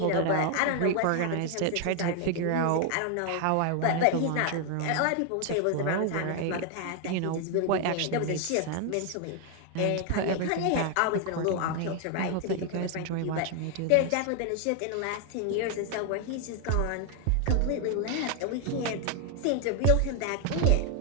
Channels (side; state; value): both; different; correlation 0.00